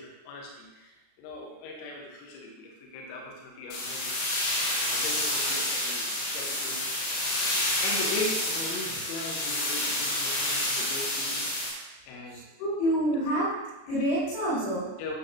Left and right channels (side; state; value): right; late; 36 ms